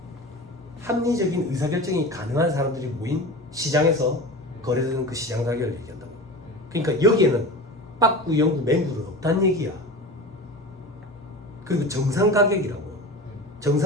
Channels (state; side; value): normal; both; correlation 0.31